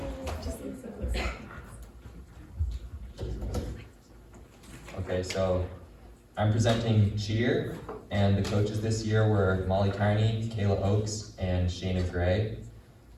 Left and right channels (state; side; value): identical; both; correlation 1.00